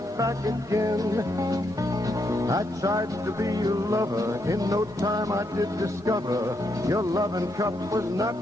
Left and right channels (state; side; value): normal; both; correlation 0.79